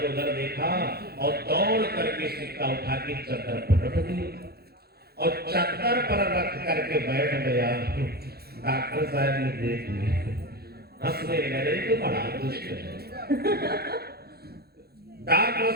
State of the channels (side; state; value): left; late; 0.46 ms